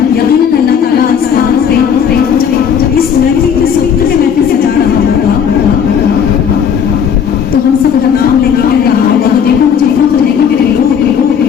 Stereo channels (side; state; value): right; quieter; 7.7 dB